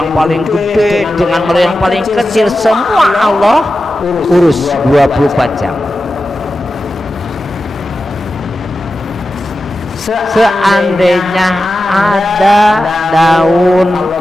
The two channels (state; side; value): normal; both; correlation 0.92